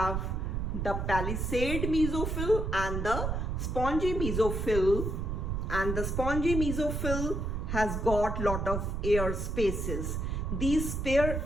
the palisade mesophyll and the spongy mesophyll, and the spongy mesophyll has got lot of air spaces. These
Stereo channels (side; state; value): right; noise; rumble, 2 dB below the sound